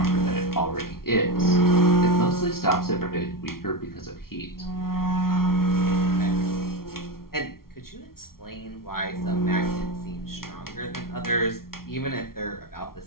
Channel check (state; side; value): late; right; 0.93 ms